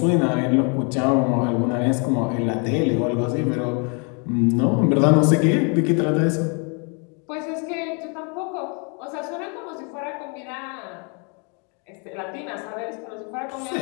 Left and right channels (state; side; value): quieter; right; 36.0 dB